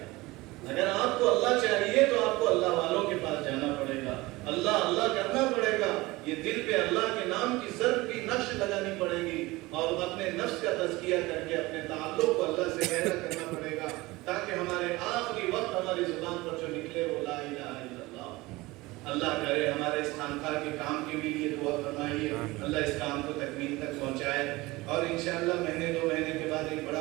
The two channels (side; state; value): left; quieter; 20.9 dB